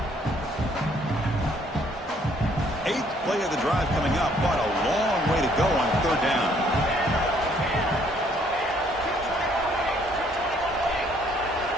Eighth play of the drive coming up, but a long way to go on third down.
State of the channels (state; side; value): normal; both; correlation 0.64